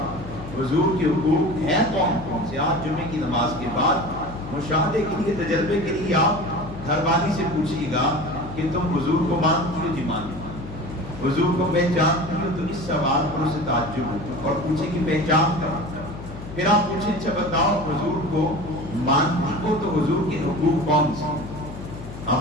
حضور کے حقوق ہیں کون کون سے۔ آج جمعے کی نماز کے بعد مشاہدے کے لیے، تجربے کے لیے آپ گھر والی سے پوچھیے گا کہ تم حضور کو مانتی ہو؟ جی مانتی ہو۔ حضور کو پہچانتی ہو؟ تو اس سوال پر اسے تعجب ہوگا اور پوچھے کہ پہچان کر، پھر آپ پوچھیں اچھا بتاؤ حضور کو مانتی ہو تو حضور کے حقوق کون سے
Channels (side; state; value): left; noise; hum, 12 dB below the sound